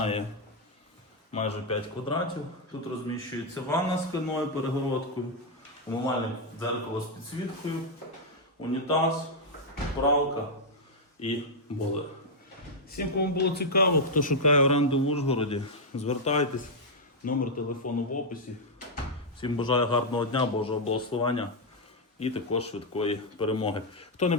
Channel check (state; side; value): normal; both; correlation -0.02